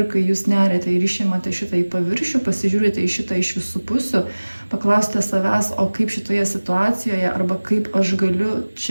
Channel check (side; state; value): both; inverted; correlation -1.00